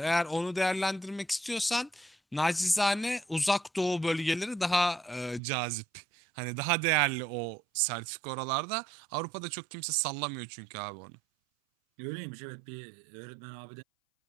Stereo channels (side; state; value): left; drops out; at 5.4 s